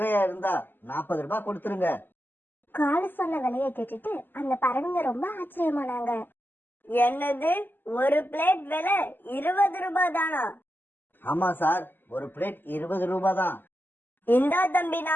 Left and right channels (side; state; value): right; late; 0.092 ms